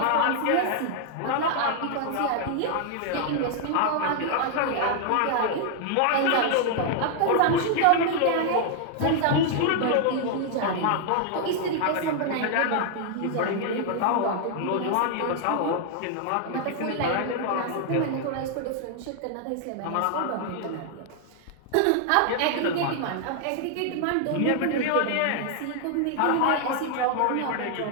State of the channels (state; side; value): different; both; correlation 0.00